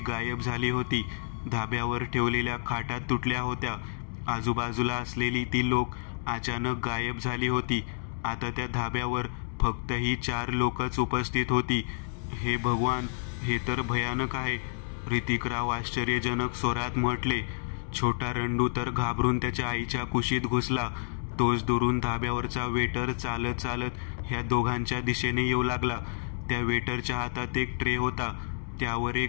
गायब झाली होती. धाब्यावर ठेवलेल्या खाटा तुटल्या होत्या. आजूबाजूला असलेली ती लोक अचानक गायब झाली होती. आता त्या धाब्यावर फक्त ही 4 लोकच उपस्थित होती. हे भगवान, हे तर भयानक आहे, ऋतिकराव आश्चर्यजनक स्वरात म्हटले. छोटा रंडू तर घाबरून त्याच्या आईच्या कुशीत घुसला. तोच दुरून धाब्यावरचा वेटर चालत चालत ह्या दोघांच्या दिशेने येऊ लागला. त्या वेटरच्या हातात एक ट्रे होता. त्यावर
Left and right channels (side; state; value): right; silent; digital silence